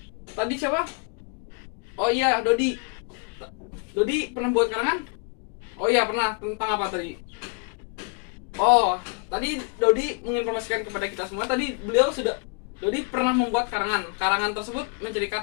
Tadi siapa? Oh iya, Dodi. Dodi pernah buat karangan? Oh iya, pernah. Tentang apa tadi? Oh, tadi Dodi menginformasikan kepada kita semua. Tadi Dodi pernah membuat karangan. Karangan tersebut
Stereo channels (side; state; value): right; quieter; 36.8 dB